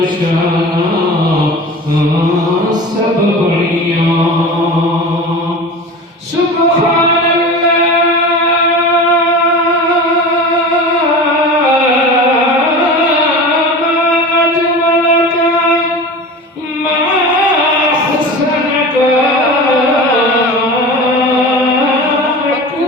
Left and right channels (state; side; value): normal; both; correlation 0.33